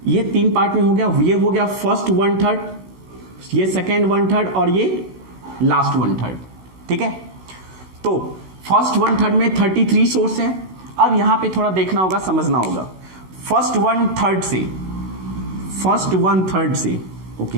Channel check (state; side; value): late; left; 16 ms